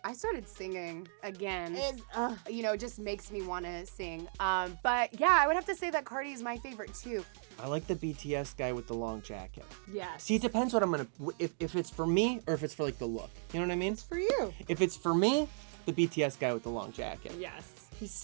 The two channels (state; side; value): silent; left; digital silence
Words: started singing again. It's, Just makes me want to sing. But yeah, I would have to say that Cardi is my favorite too. I like the BTS guy with the long jacket. Yes. See, it depends what I'm gonna if it's for me or if it's for like the look. You know what I mean? for you. If it's for me, the BTS guy with the long jacket. Yes. He's